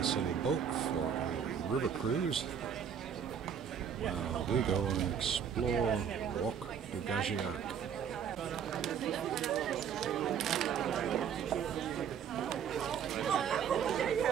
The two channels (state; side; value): quieter; left; 7.9 dB